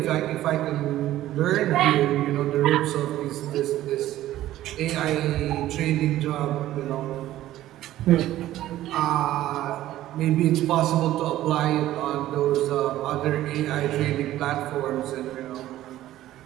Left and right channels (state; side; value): quieter; left; 14.2 dB